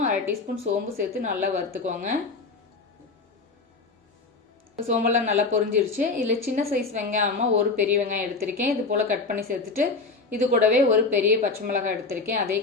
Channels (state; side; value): quieter; right; 4.0 dB